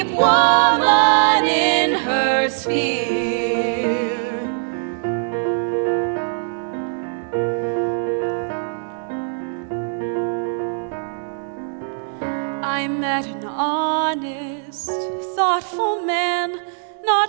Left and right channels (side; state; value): left; silent; digital silence